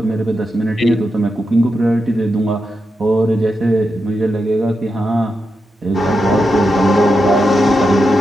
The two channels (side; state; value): both; normal; correlation 0.87